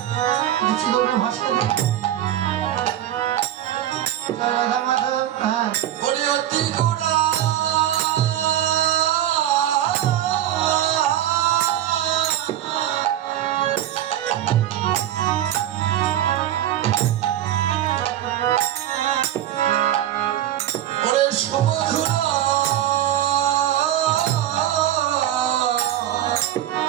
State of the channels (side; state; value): left; quieter; 12.1 dB